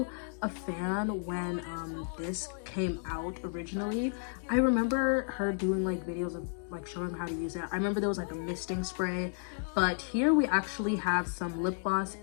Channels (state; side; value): silent; right; 56 dB below the other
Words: a fan when this came out originally. I remember her doing like videos of like showing how to use it. I remember there was like a misting spray, but here we actually have some lip gloss